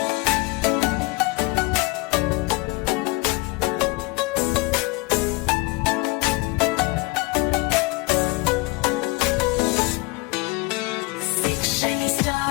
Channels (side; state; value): right; quieter; 25.1 dB